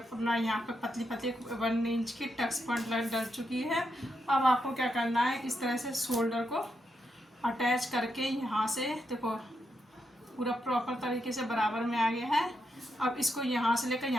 यहाँ पे पतली पतली 1 इंच की टक्स पॉइंट डल चुकी है। अब आपको क्या करना है, इस तरह से शोल्डर को अटैच करके यहाँ से देखो पूरा प्रॉपर तरीके से बराबर में आ गया है। अब इसको यहाँ से लेकर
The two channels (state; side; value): normal; both; correlation 0.83